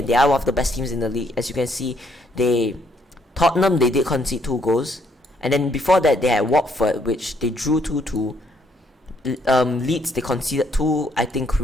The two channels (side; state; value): both; normal; correlation 0.70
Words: they are one of the best teams in the league. As you can see, Tottenham, they did concede 2 goals. And then before that, they had Watford, which they drew 2-2. Leeds, they conceded 2, I think,